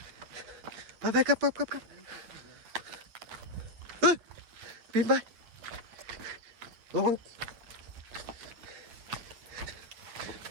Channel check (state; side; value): late; left; 8.8 ms